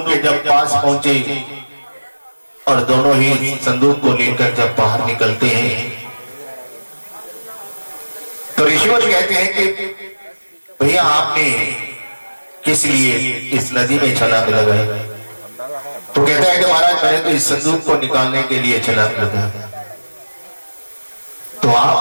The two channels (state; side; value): inverted; both; correlation -1.00